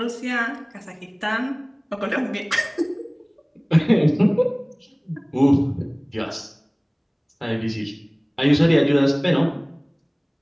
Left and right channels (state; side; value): identical; both; correlation 1.00